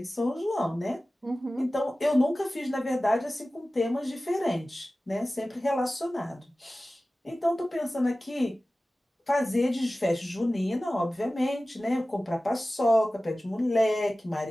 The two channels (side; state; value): both; normal; correlation 0.96